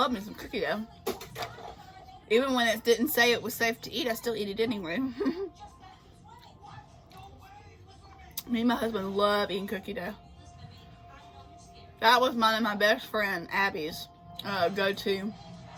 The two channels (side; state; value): both; identical; correlation 1.00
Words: me some cookie dough. Even when it didn't say it was safe to eat, I still eat it anyway. Me and my husband love eating cookie dough. That was mine and my best friend Abby's go-to,